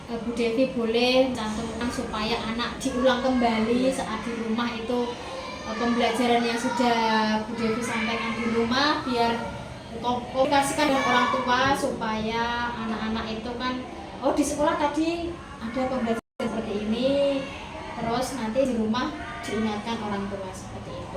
Bu Devi boleh cantumkan supaya anak diulang kembali saat di rumah itu pembelajaran yang sudah Bu Devi sampaikan di rumah, biar komunikasikan dengan orang tua supaya anak-anak itu kan di sekolah tadi ada pembelajaran seperti ini, terus nanti di rumah diingatkan orang tua seperti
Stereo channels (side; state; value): both; identical; correlation 1.00